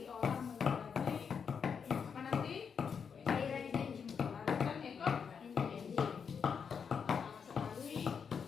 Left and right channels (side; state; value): right; quieter; 6.5 dB